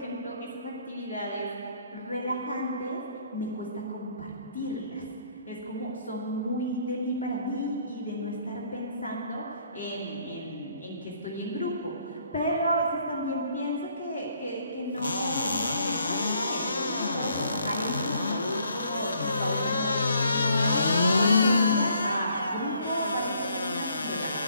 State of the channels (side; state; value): both; inverted; correlation -0.64